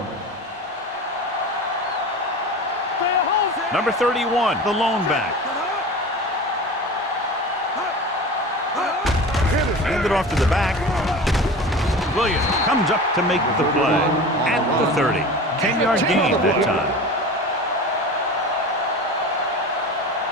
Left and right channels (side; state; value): both; normal; correlation 0.34